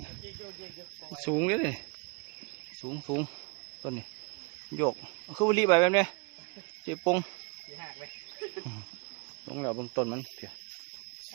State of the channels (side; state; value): left; quieter; 31.1 dB